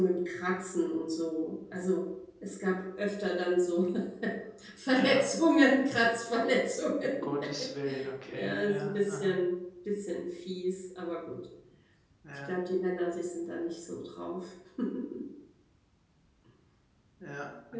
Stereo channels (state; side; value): identical; both; correlation 1.00